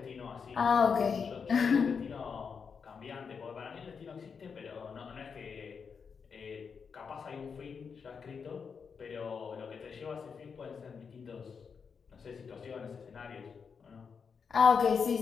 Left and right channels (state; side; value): quieter; right; 6.0 dB